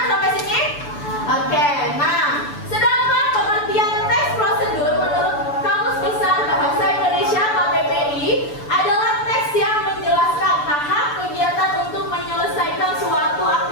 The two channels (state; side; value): late; right; 6.9 ms